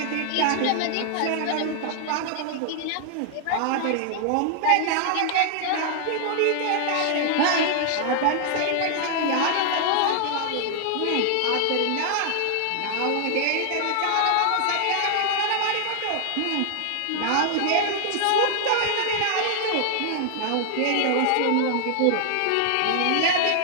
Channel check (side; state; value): both; different; correlation 0.00